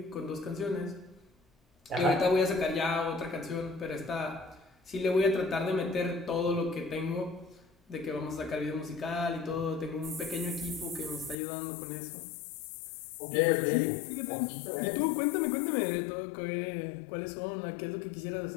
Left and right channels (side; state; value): right; drops out; at 11.4 s